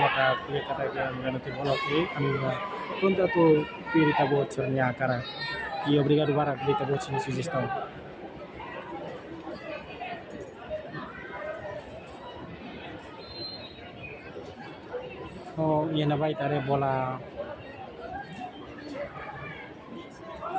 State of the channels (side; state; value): both; identical; correlation 1.00